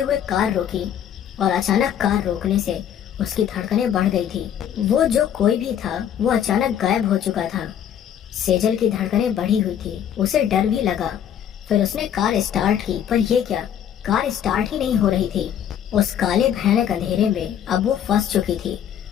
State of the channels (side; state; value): right; quieter; 9.5 dB